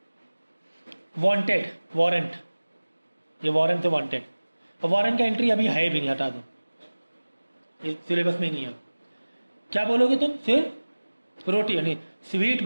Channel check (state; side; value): inverted; both; correlation -1.00